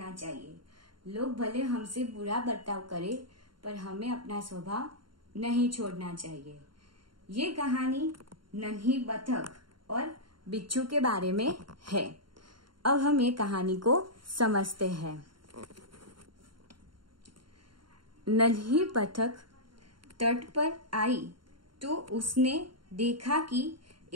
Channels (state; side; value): late; left; 0.72 ms